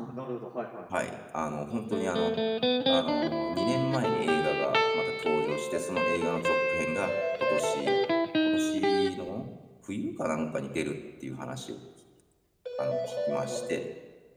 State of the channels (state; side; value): identical; both; correlation 1.00